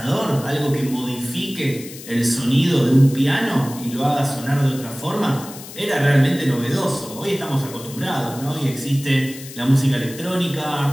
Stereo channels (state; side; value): noise; left; hiss, 15 dB below the sound